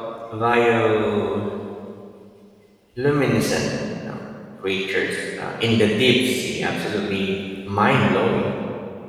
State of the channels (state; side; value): identical; both; correlation 1.00